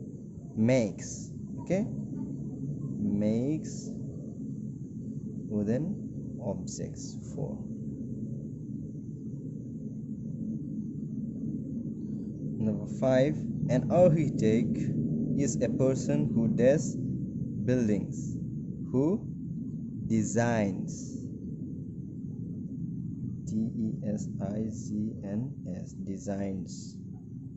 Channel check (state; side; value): identical; both; correlation 1.00